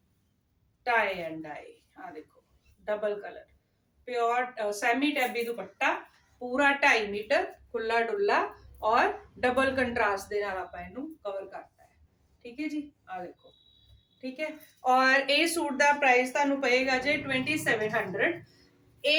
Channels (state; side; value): identical; both; correlation 1.00